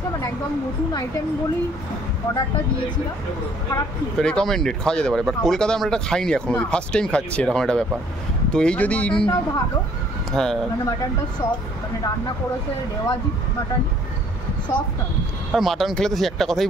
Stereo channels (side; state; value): both; normal; correlation 0.60